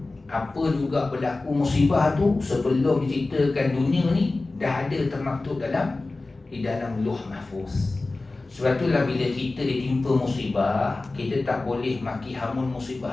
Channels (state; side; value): quieter; right; 3.3 dB